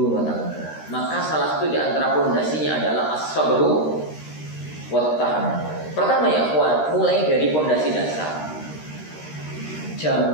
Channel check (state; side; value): late; right; 13 ms